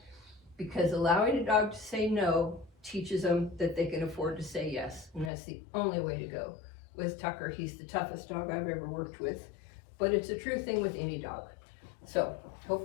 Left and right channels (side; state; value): right; drops out; at 5.3 s